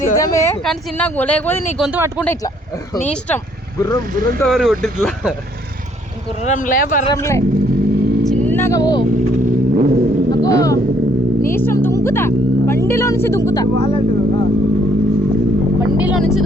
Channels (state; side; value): normal; both; correlation 0.66